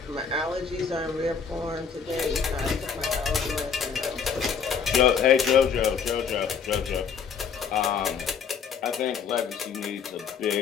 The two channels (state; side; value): quieter; right; 6.5 dB